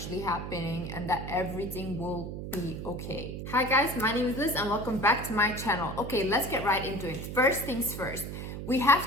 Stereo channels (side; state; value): right; noise; hum, 7 dB below the sound